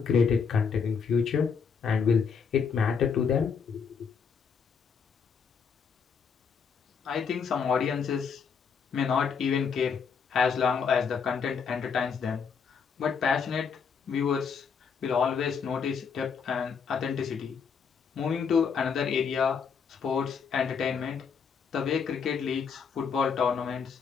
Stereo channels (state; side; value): quieter; right; 6.2 dB